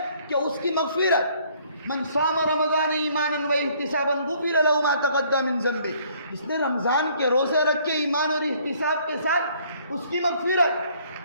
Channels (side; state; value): both; inverted; correlation -0.61